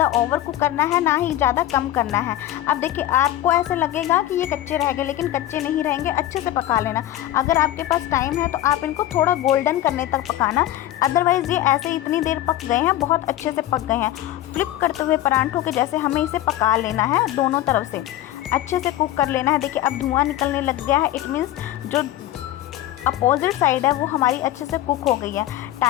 ओवर कुक करना है, ना ही ज़्यादा कम करना है। अब देखिए आपको ऐसे लगेगा कि ये कच्चे रह गए, लेकिन कच्चे नहीं रहेंगे, अच्छे से पका लेना। अगर आपके पास टाइम है तो आप इनको थोड़ा गोल्डन करने तक पकाना, अदरवाइज़ ये ऐसे इतनी देर पक गए हैं, बहुत अच्छे से पक गए हैं। फ्लिप करते हुए परांठों के जैसे हमें इसे पका लेना है, दोनों तरफ से अच्छे से कुक कर लेना है। देखिए अब धुआं निकलने लग गया है, इट मीन्स जो अपोजिट साइड है वो हमारी अच्छे से कुक हो गई है।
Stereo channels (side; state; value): right; quieter; 13.6 dB